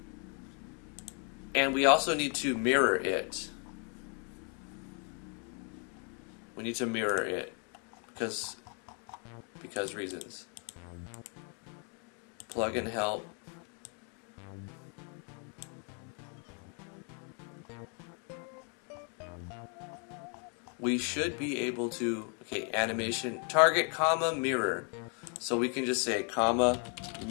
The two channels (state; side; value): quieter; right; 39.4 dB